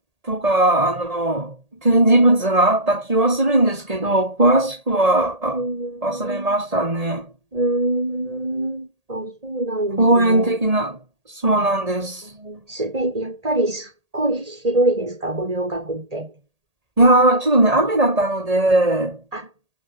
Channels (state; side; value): late; left; 1.8 ms